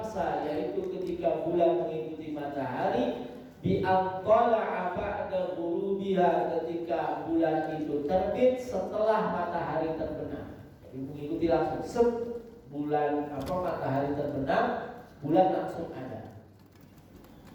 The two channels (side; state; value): both; identical; correlation 1.00